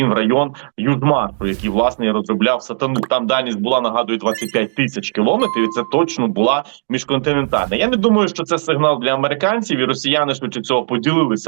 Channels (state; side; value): silent; left; digital silence